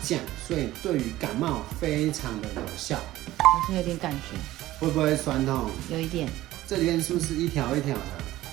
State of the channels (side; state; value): left; quieter; 15.8 dB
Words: 降，所以对于感冒非常的有效。好像有点感觉，会不会酸痛？有一点。这里面是不是一条一条的？